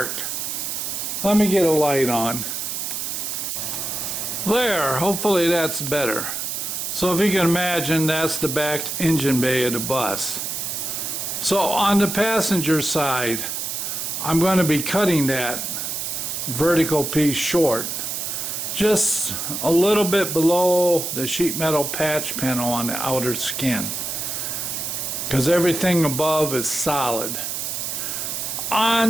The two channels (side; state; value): right; noise; hiss, 3 dB below the sound